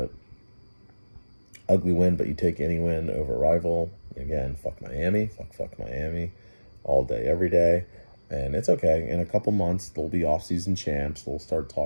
ugly win, but you take any win over a rival. Again, fuck Miami, fuck Miami, all day, every day. And it's okay. In a couple months, they'll be off-season champs. They'll start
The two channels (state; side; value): inverted; both; correlation -1.00